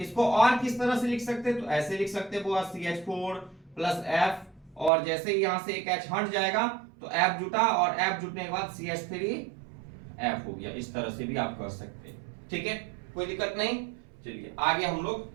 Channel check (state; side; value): drops out; left; at 4.9 s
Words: और किस तरह से लिख सकते हैं? तो ऐसे लिख सकते हैं CH4 प्लस F, और जैसे ही यहां से एक H हट जाएगा तो F जुटा और F जुटने के बाद CH3 F हो गया। इस तरह से भी आप कर सकते हैं, ठीक है, कोई दिक्कत नहीं। चलिए आगे हम